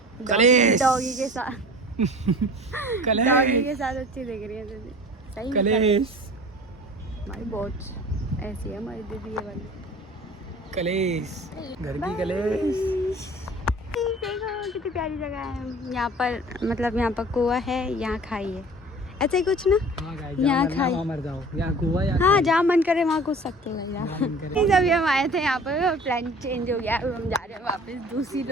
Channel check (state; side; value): normal; both; correlation 0.43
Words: डॉगी के साथ डॉगी के साथ अच्छी दिख रही है दीदी। सही कलेश हमारी बहुत ऐसी है हमारी दीदी ये वाली। कलेश घर की कलेश। देखो कितनी प्यारी जगह है यहाँ पर। मतलब यहाँ पर कुआ है, यहाँ खाई है, ऐसे ही कुछ ना। यहाँ खाई मर जाओ, यहाँ कुआ या हाँ जहाँ मन करे वहाँ घुस सकते हो। अभी हम आए थे यहाँ पर, प्लान चेंज हो गया, अब हम जा रहे हैं वापस दूसरी